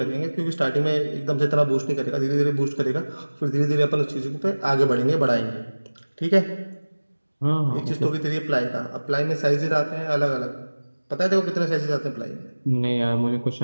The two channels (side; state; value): both; inverted; correlation -1.00